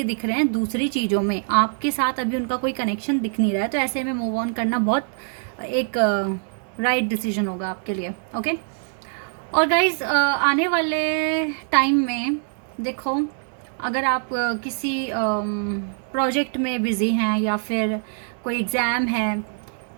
दिख रहे हैं दूसरी चीज़ों में, आपके साथ अभी उनका कोई कनेक्शन दिख नहीं रहा है। तो ऐसे में मूव ऑन करना बहुत एक राइट डिसीजन होगा आपके लिए, ओके। और गाइज आने वाले टाइम में देखो, अगर आप किसी प्रोजेक्ट में बिज़ी हैं या फिर कोई एग्ज़ाम है,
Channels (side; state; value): left; silent; 63 dB below the other